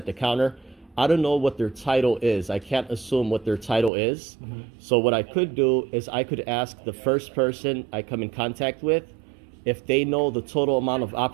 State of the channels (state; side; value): drops out; left; at 3.9 s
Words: the counter. I don't know what their title is. I can't assume what their title is. So what I could do is I could ask the first person I come in contact with if they know the total amount of